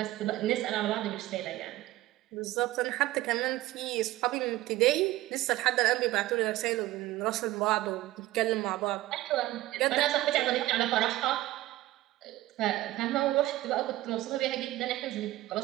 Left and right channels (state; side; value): quieter; left; 16.7 dB